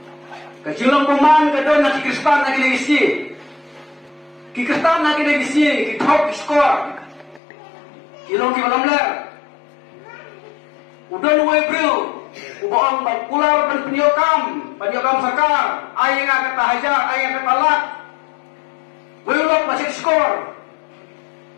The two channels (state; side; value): drops out; right; at 7.4 s